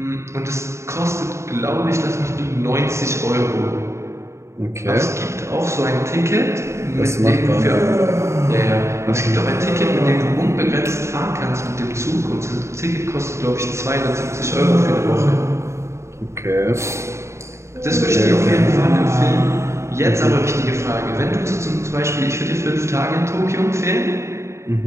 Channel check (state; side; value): late; left; 0.14 ms